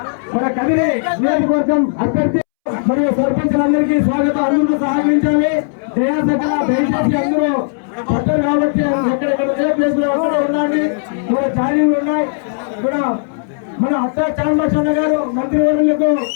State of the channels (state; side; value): silent; right; 69 dB below the other